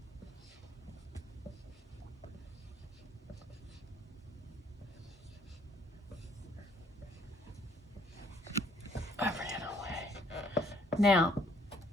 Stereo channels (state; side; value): normal; both; correlation 0.63